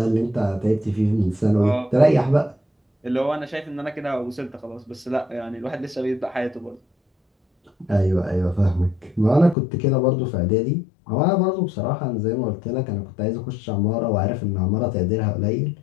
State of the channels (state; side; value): drops out; right; at 9.6 s